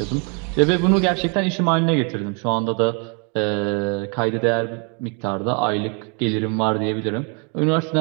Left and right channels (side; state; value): left; quieter; 36.1 dB